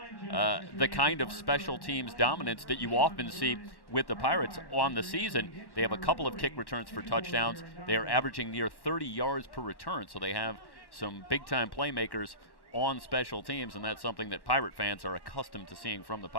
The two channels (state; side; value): late; right; 1.1 ms